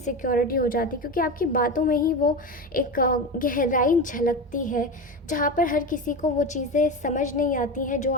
हो जाती है, क्योंकि आपकी बातों में ही वो एक गहराई झलकती है, जहाँ पर हर किसी को वो चीज़ें समझ नहीं आती हैं जो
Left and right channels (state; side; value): normal; both; correlation 0.21